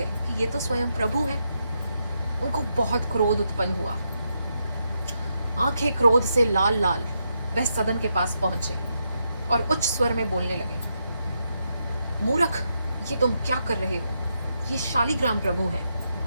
कि ये तो स्वयं प्रभु हैं। उनको बहुत क्रोध उत्पन्न हुआ। आंखें क्रोध से लाल लाल वह सदन के पास पहुंचे और उच्च स्वर में बोलने लगे, मूर्ख, ये तुम क्या कर रहे हो? ये शालिग्राम प्रभु हैं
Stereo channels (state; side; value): inverted; both; correlation -0.81